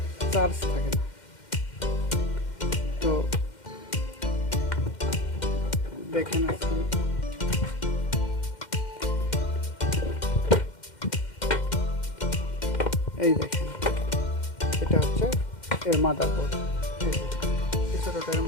চার্জ থাকে না। তো দেখেন আজকে এই দেখেন, এটা হচ্ছে এর মাদারবোর্ড। এই যে ছোটোটা এর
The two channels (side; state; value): right; late; 2.1 ms